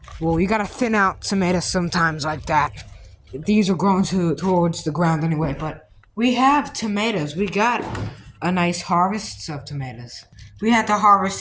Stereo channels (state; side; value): identical; both; correlation 1.00